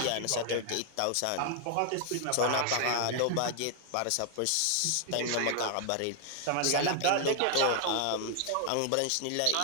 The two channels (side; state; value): both; different; correlation 0.00